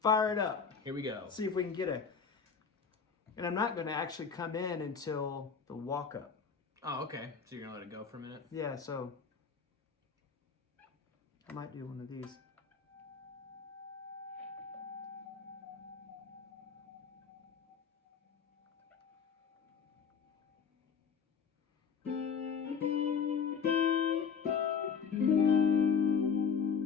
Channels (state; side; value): quieter; right; 6.2 dB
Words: Fire it up. Here we go. See if we can get a, and I'm not gonna actually come in until the walk up. Oh, okay. So you're going to let it go for a minute? Yeah, so I might do one of these.